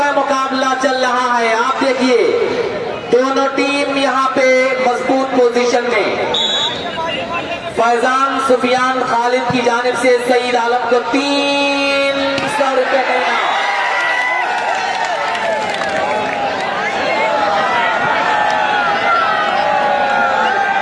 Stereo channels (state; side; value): identical; both; correlation 1.00